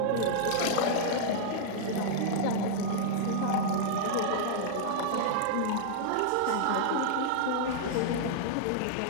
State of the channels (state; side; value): different; both; correlation -0.01